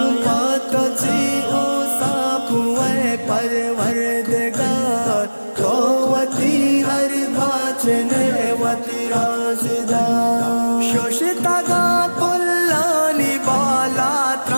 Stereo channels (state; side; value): inverted; both; correlation -1.00